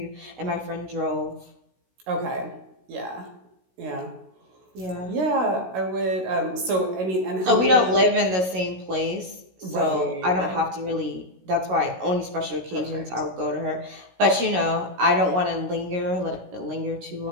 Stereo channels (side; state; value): left; late; 16 ms